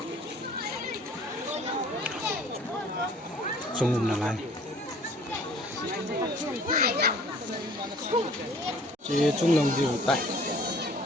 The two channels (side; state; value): both; normal; correlation 0.53